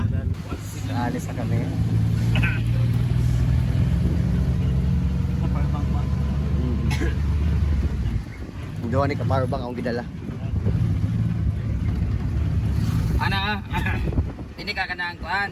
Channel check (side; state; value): both; identical; correlation 1.00